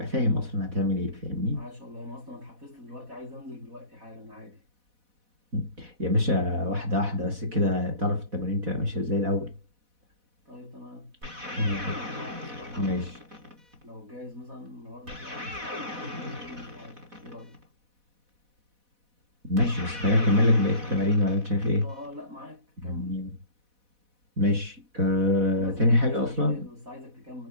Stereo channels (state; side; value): late; left; 4.1 ms